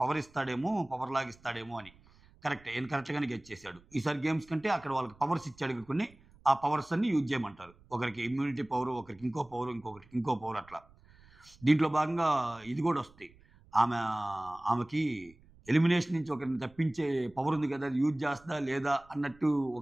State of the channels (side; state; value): right; noise; rumble, 27 dB below the sound